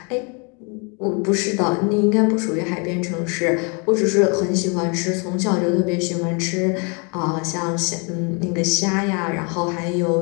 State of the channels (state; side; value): quieter; right; 33.9 dB